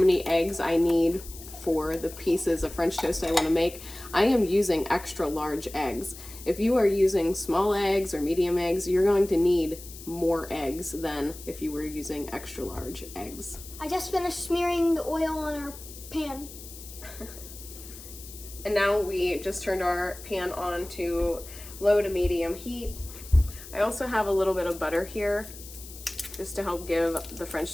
eggs I need for the pieces of French toast I want to make, I am using extra large eggs. If you are using small eggs or medium eggs, you're going to need more eggs than if you were using extra large eggs. I just finished smearing the oil on our pan. And now we just turned our pan on to low to medium heat. I also have a little bit of butter here just to help give the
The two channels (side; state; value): left; noise; hiss, 15 dB below the sound